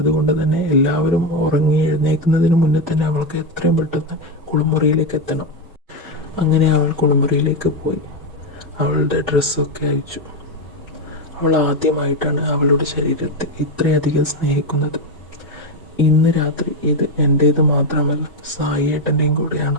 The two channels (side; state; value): both; normal; correlation 0.09